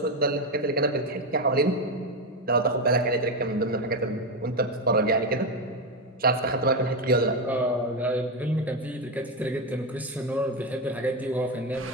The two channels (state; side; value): normal; both; correlation 0.11